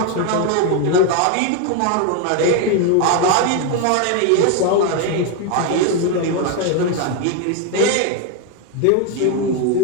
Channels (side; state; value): both; different; correlation 0.01